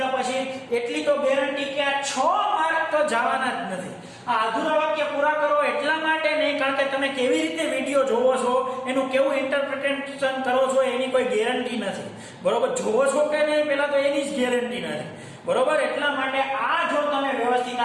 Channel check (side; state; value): both; identical; correlation 1.00